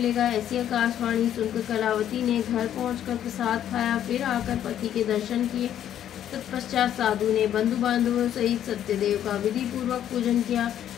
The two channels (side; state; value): right; quieter; 10.6 dB